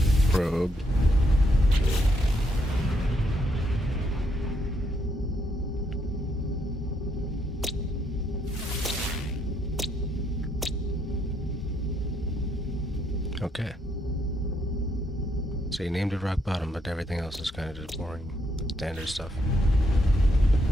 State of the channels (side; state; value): both; normal; correlation 0.75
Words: Probe. Okay. So you named it rock bottom, but everything else is kind of just boring, standard stuff.